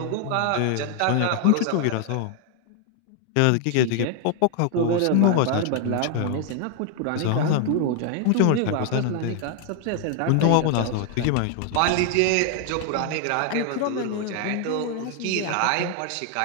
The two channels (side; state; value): both; different; correlation 0.00